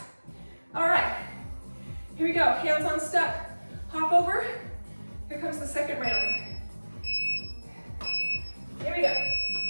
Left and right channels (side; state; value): both; inverted; correlation -1.00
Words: All right, here we go. Hands on step, hop over. Here comes the second round. Here we go.